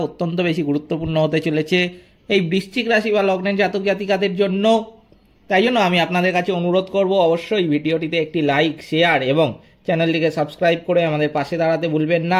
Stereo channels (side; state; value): both; identical; correlation 1.00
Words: অত্যন্ত বেশি গুরুত্বপূর্ণ হতে চলেছে এই বৃশ্চিক রাশি বা লগ্নের জাতক জাতিকাদের জন্য। তাই জন্য আমি আপনাদের কাছে অনুরোধ করব, অবশ্যই ভিডিওটিতে একটি লাইক, শেয়ার এবং চ্যানেলটিকে সাবস্ক্রাইব করে আমাদের পাশে দাঁড়াতে ভুলবেন